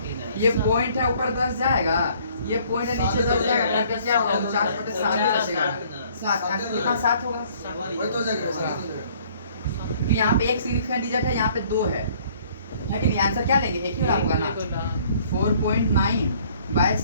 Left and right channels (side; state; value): both; inverted; correlation -0.58